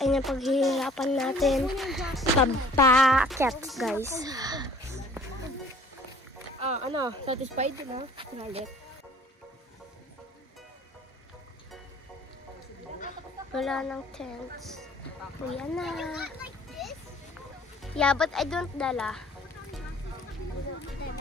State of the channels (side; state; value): both; normal; correlation 0.53